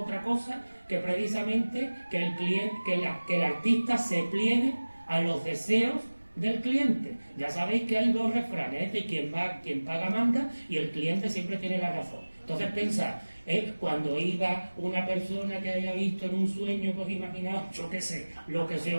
cosa que precisamente que el artista se pliegue a los deseos del cliente. Ya sabéis que hay dos refranes, quien paga manda, y el cliente siempre tiene la razón. Entonces pensad, cuando iba una persona que haya visto en un sueño, pues imaginaos, yo qué sé, lo que se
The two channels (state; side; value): inverted; both; correlation -1.00